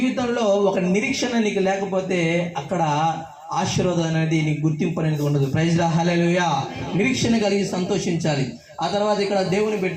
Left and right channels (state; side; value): identical; both; correlation 1.00